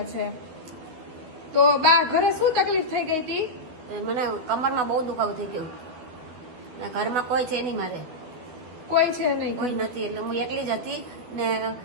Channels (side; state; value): left; late; 12 ms